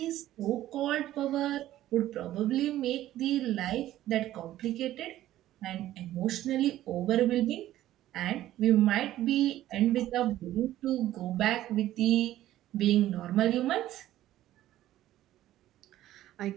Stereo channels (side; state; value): left; quieter; 13.9 dB